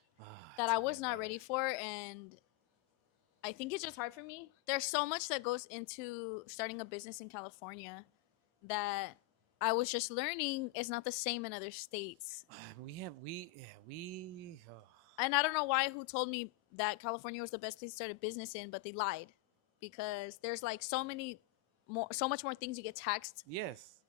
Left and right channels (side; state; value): right; quieter; 15.5 dB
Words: that I Tell me was not about ready it. for, and I think it's just hard for me. There's so much that goes into starting a business in California that I was just learning is not the same in other states. We. And I don't know who told me that California was the best place to start a business in, but they lied because there's like so much more things you get taxed Yes.